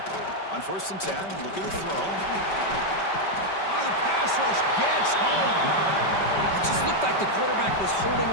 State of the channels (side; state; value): right; late; 5.2 ms